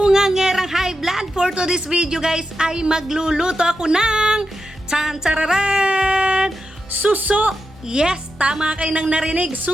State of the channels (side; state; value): both; normal; correlation 0.88